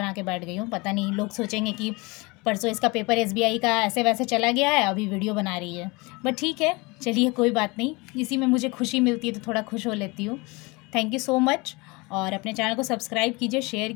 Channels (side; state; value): right; quieter; 25.8 dB